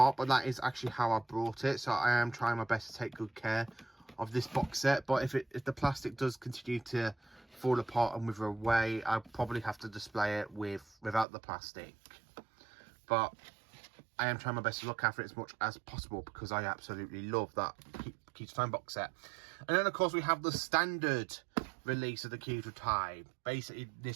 but that is actually how I brought it. So I am trying my best to take good care of this box set. But if the plastic does continue to fall apart and wither away, I'll probably have to display it without the plastic. But I am trying my best to look after it as much as possible because I absolutely love that Key to Time box set. And then, of course, we have the standard release of the Key to Time. Basically,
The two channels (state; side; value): drops out; left; at 11.2 s